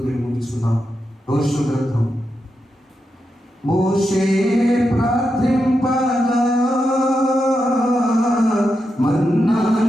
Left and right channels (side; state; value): both; normal; correlation 0.86